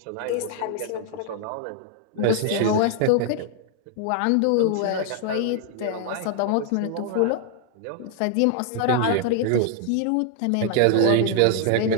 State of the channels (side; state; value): both; different; correlation 0.00